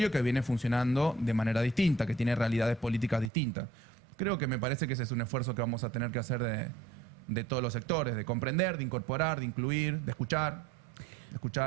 que viene funcionando de manera distinta, que tiene realidades políticas distintas. Creo que me parece que ese es un esfuerzo que vamos a tener que hacer de todos los sectores, de comprender, de incorporar, de incluir, de escuchar.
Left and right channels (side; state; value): left; drops out; at 3.3 s